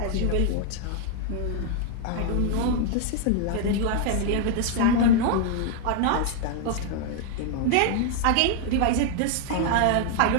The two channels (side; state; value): both; different; correlation 0.00